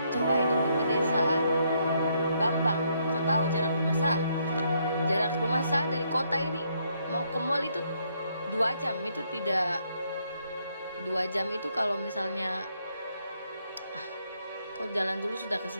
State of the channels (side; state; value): both; inverted; correlation -0.73